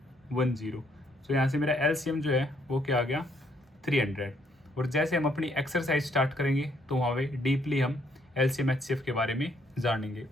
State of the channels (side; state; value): both; normal; correlation 0.69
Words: 1 0। सो यहाँ से मेरा एलसीएम जो है वो क्या आ गया, 300। और जैसे हम अपनी एक्सरसाइज स्टार्ट करेंगे तो वहाँ पे डीपली हम एलसीएम एचसीएफ के बारे में जानेंगे,